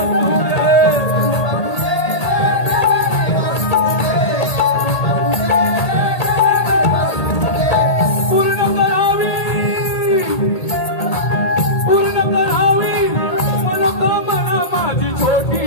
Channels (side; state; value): right; late; 1.8 ms